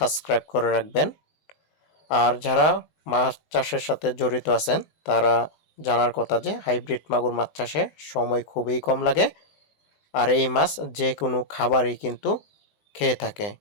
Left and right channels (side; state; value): right; late; 19 ms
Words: করে রাখবেন। আর যারা মাছ চাষের সাথে জড়িত আছেন তারা জানার কথা যে হাইব্রিড মাগুর মাছ চাষে সময় খুবই কম লাগে, আর এই মাছ যে কোনো খাবারই কিন্তু খেয়ে থাকে।